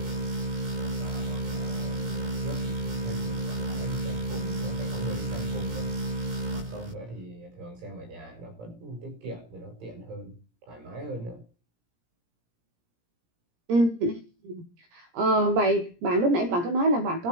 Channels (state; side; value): late; left; 17 ms